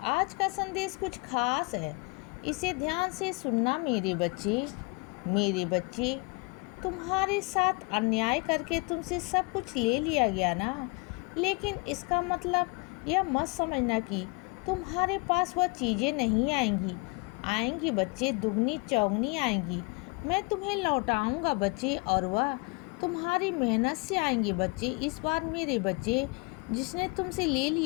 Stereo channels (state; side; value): quieter; right; 29.7 dB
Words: का संदेश कुछ खास है। इसे ध्यान से सुनना मेरे बच्चे। मेरे बच्चे, तुम्हारे साथ अन्याय करके तुमसे सब कुछ ले लिया गया ना, लेकिन इसका मतलब यह मत समझना कि तुम्हारे पास वह चीज़ें नहीं आएंगी। आएंगी बच्चे, दुगनी चौगनी आएंगी। मैं तुम्हें लौटाऊंगा बच्चे, और वह तुम्हारी मेहनत से आएंगे बच्चे। इस बार मेरे बच्चे, जिसने तुमसे ले